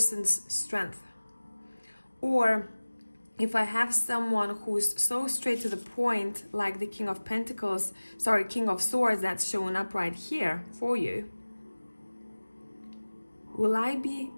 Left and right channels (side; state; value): both; inverted; correlation -1.00